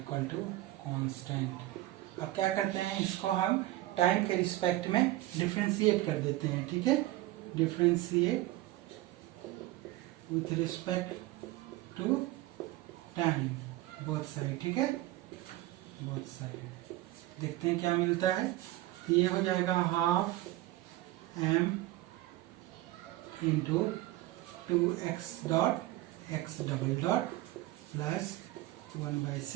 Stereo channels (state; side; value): quieter; left; 16.7 dB